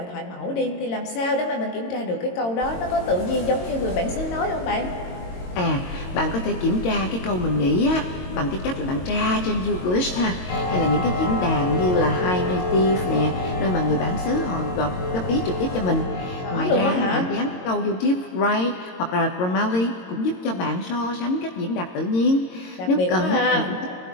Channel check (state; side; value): late; right; 22 ms